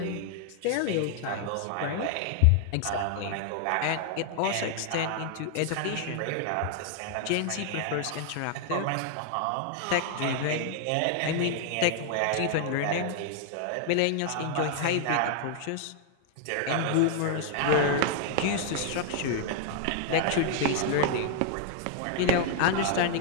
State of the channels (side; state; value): both; different; correlation 0.00